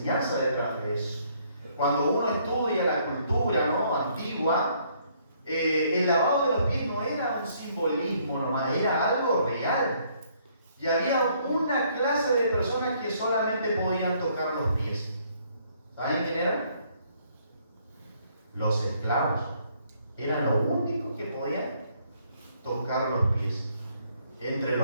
detrás de eso. Cuando uno estudia la cultura, ¿no?, antigua, el lavado de los pies no era un simbolismo nomás, era algo real. Y había una clase de personas que solamente podían tocar los pies. ¿Saben quién eran? Los esclavos. Eran los únicos que podían tocar los pies. Entre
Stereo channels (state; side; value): inverted; both; correlation -0.66